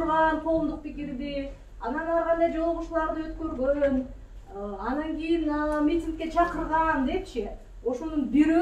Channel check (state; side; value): identical; both; correlation 1.00